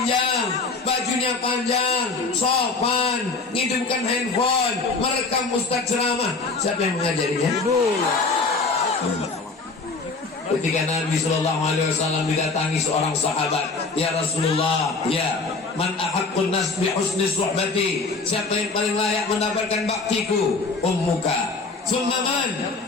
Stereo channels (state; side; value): quieter; right; 4.0 dB